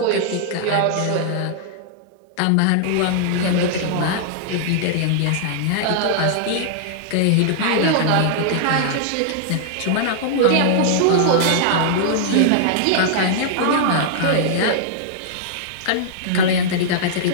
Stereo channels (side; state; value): both; different; correlation -0.01